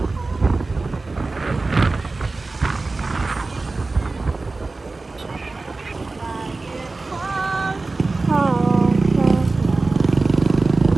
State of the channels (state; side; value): quieter; left; 3.5 dB